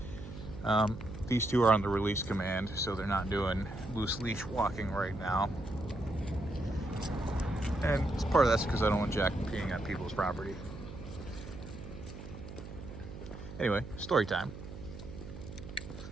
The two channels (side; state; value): right; noise; hum, 12 dB below the sound